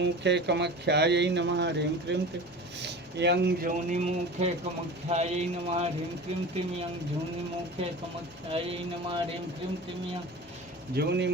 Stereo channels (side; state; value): both; normal; correlation 0.35